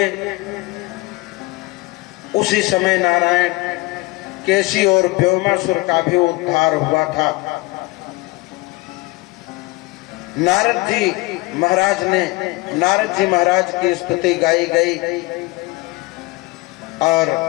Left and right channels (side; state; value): right; quieter; 22.8 dB